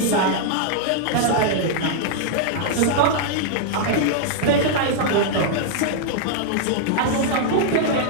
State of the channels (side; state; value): both; different; correlation -0.01